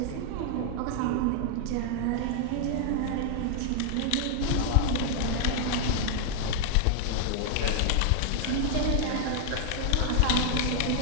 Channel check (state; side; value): different; both; correlation 0.00